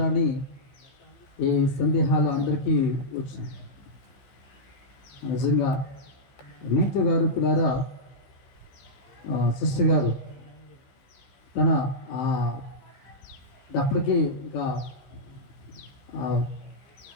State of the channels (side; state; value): right; late; 15 ms